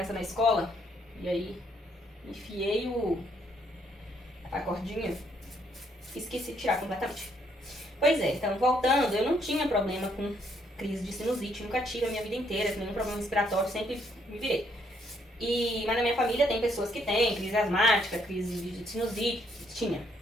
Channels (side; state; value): both; normal; correlation 0.71